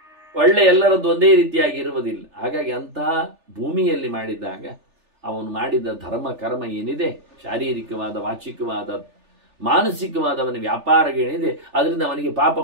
ಒಳ್ಳೆ ಎಲ್ಲರದ್ದು ಒಂದೇ ರೀತಿಯಾಗಿ ಇರುವುದಿಲ್ಲ. ಹಾಗಾಗಿ ಅಂತಹ ಭೂಮಿಯಲ್ಲಿ ಮಾಡಿದಾಗ ಅವನು ಮಾಡಿದ ಧರ್ಮ ಕರ್ಮ ಏನಿದೆ, ಶಾರೀರಿಕವಾದ, ವಾಚಿಕವಾದ, ಮಾನಸಿಕವಾದ ಅವನ ವ್ಯಾಪಾರಗಳೇನಿದೆ, ಅದರಿಂದ ಅವನಿಗೆ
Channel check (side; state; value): left; late; 3.4 ms